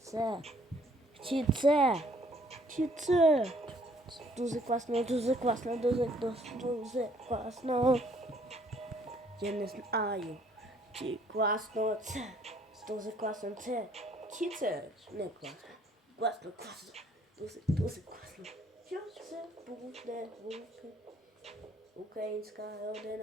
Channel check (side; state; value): both; normal; correlation 0.62